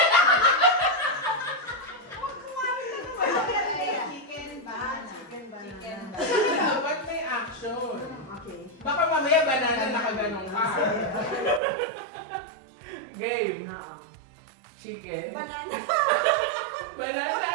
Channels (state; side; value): drops out; left; at 11.6 s